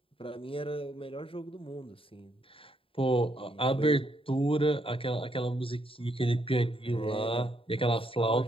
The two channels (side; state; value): right; late; 0.26 ms